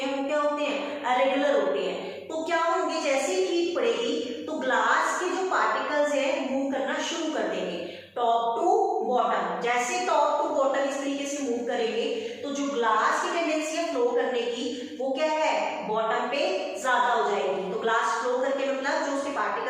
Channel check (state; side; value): identical; both; correlation 1.00